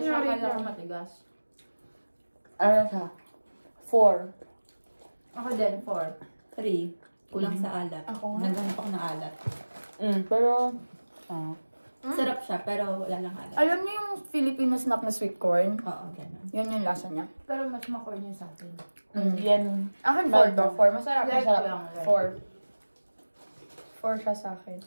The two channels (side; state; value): both; inverted; correlation -1.00